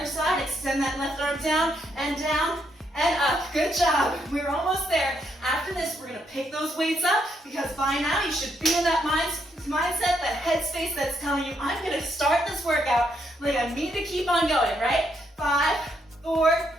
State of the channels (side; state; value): both; normal; correlation 0.76